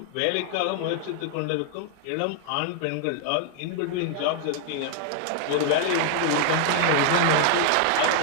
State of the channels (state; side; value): different; both; correlation 0.00